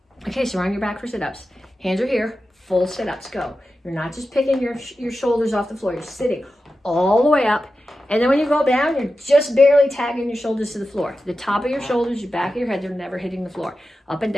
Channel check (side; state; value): both; normal; correlation 0.92